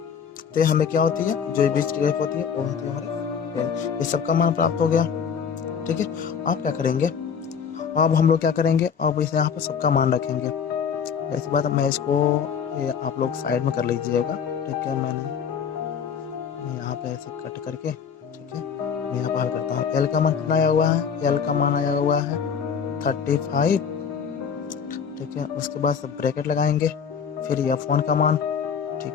तो हमें क्या होती है, जो बीच की रेख होती है वो होती है हमारी 10। ये सबका मान प्राप्त हो गया। ठीक है। आप क्या करेंगे, अब हम लोग क्या करेंगे, अब इसे यहाँ पे सबका मान रखेंगे। ऐसी बात है, मैं इसको आप लोग साइड में कर लीजिएगा। ठीक है। मैं यहाँ पे ऐसे कट करके, ठीक है, मैं यहाँ पर हल करता हूँ। एल का मान कितना आया हुआ है, एल का मान आया हुआ है 35। ठीक है। उसके बाद सब ब्रैकेट लगाएंगे, फिर F1 का मान,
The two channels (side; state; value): right; quieter; 7.0 dB